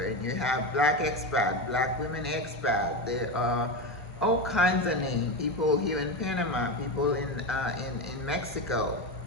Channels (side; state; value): both; normal; correlation 0.17